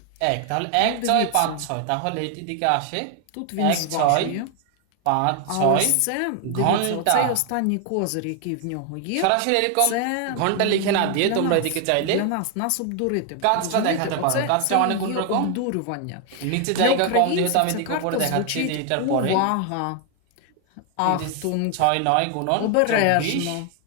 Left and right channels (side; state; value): both; different; correlation 0.01